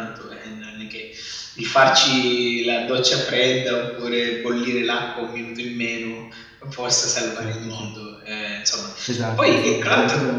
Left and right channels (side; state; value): both; identical; correlation 1.00